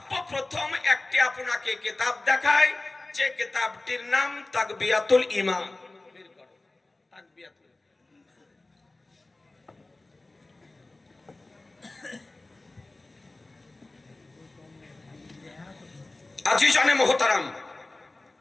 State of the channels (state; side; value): quieter; right; 3.0 dB